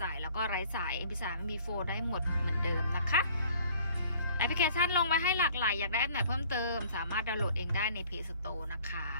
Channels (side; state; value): both; inverted; correlation -0.54